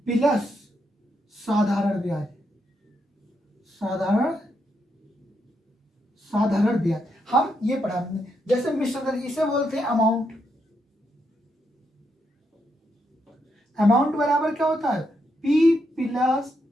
प्लस साधारण ब्याज, साधारण ब्याज। हम ये पढ़ा हमने, जैसे मिश्र धन इसे बोलते हैं अमाउंट। अमाउंट बराबर क्या होता है, P प्लस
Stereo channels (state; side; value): normal; both; correlation 0.80